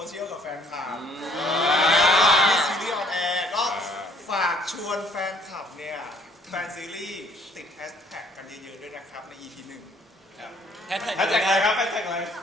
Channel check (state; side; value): normal; both; correlation 0.61